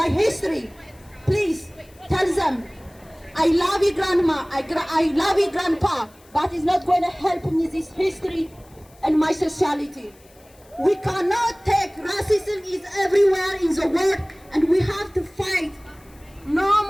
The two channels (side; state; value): left; noise; hiss, 29 dB below the sound